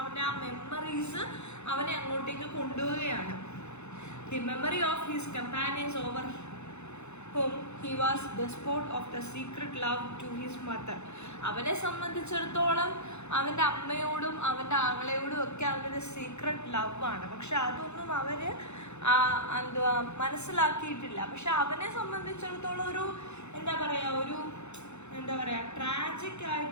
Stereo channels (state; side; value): late; right; 0.81 ms